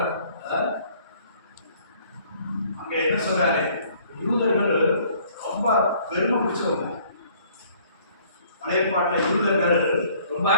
அங்க என்ன சொல்றாரு? யூதர்கள் ரொம்ப பெருமை பிடிச்சவங்க. பழைய பாட்டுல யூதர்கள் ரொம்ப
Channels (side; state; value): both; inverted; correlation -0.58